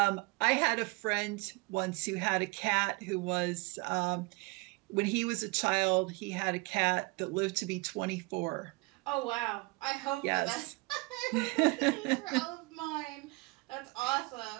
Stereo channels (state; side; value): quieter; left; 25.8 dB